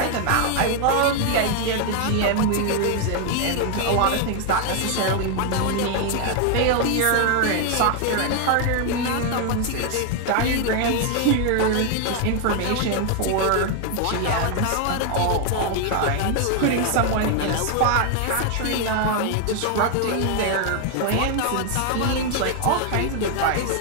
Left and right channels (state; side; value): different; both; correlation 0.00